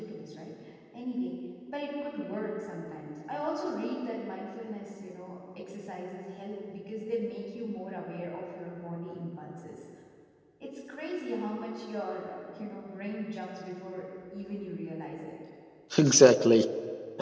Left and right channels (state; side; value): identical; both; correlation 1.00